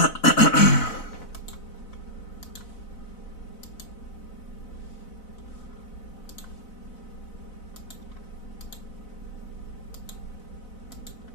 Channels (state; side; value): late; right; 4.0 ms